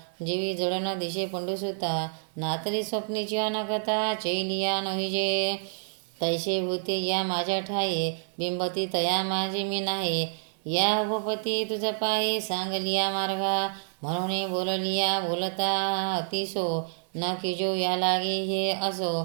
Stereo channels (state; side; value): silent; left; 59 dB below the other